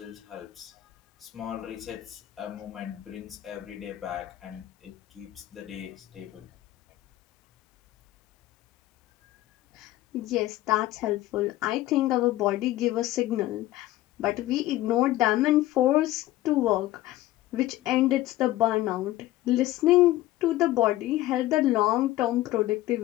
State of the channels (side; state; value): right; quieter; 15.8 dB